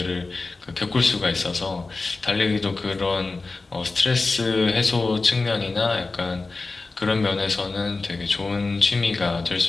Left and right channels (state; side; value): quieter; right; 3.6 dB